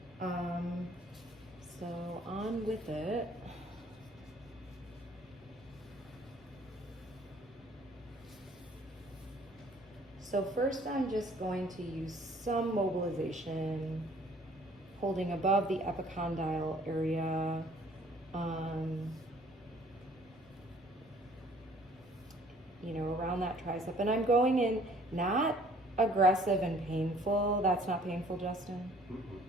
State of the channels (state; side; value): normal; both; correlation 0.56